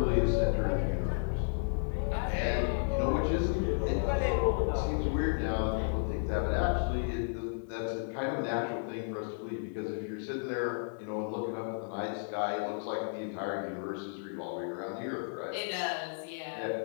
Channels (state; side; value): silent; right; digital silence